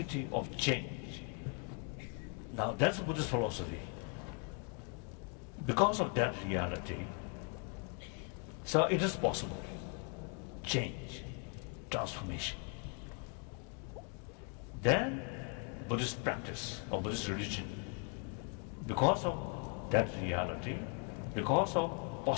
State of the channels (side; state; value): right; quieter; 35.6 dB